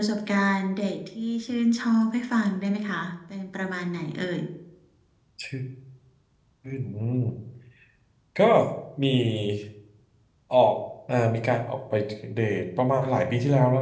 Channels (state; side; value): identical; both; correlation 1.00